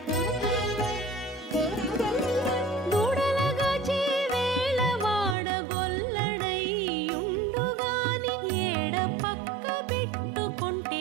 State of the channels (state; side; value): drops out; left; at 5.4 s